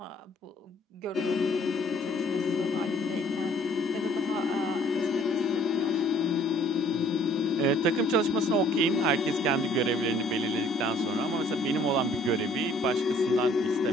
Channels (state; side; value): normal; both; correlation 0.58